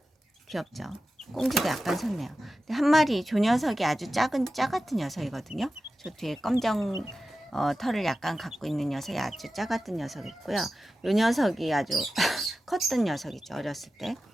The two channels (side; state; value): both; normal; correlation 0.93